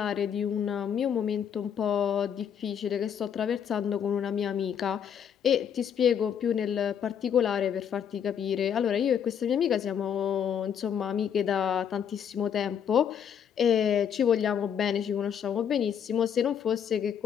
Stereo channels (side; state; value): right; quieter; 8.3 dB